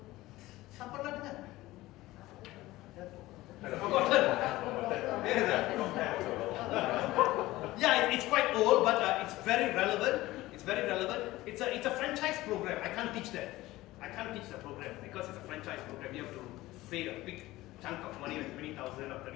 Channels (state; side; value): quieter; right; 17.8 dB